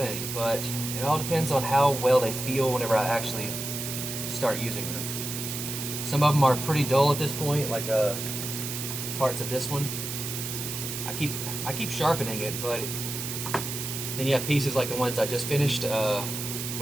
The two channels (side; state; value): right; noise; hiss, 5 dB below the sound